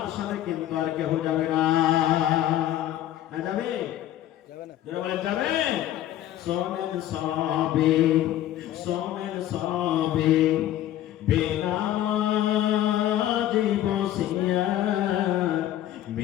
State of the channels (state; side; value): quieter; right; 12.7 dB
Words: সাথে কিন্তু আর কেউ যাবে না। না যাবে? যাবে না। যারা বলে যাবে। সোমেন সবে সোমেন সবে বেনামাজি বসিয়া